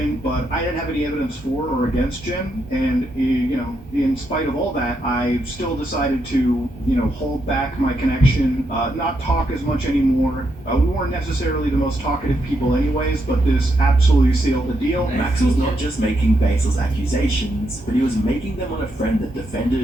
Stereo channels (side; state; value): both; normal; correlation 0.80